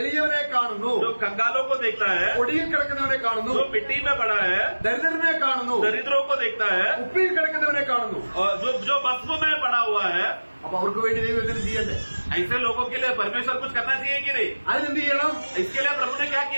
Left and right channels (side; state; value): both; inverted; correlation -1.00